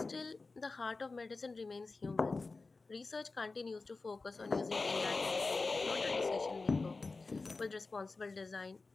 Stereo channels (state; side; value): quieter; right; 3.8 dB